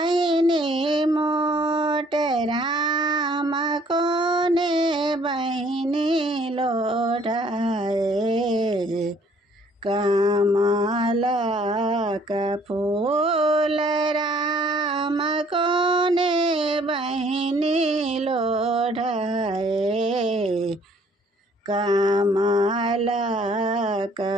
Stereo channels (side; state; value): both; normal; correlation 0.60